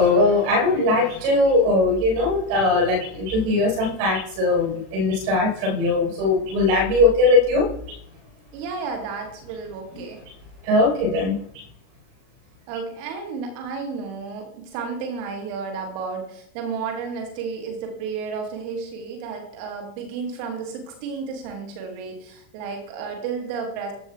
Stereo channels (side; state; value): left; late; 38 ms